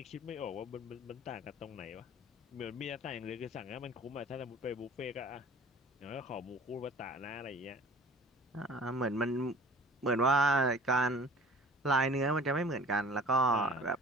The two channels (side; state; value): both; normal; correlation 0.47